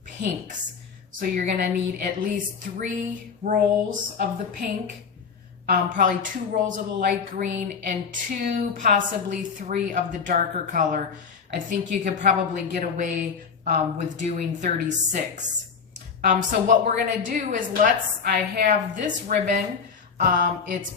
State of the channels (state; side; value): quieter; right; 5.9 dB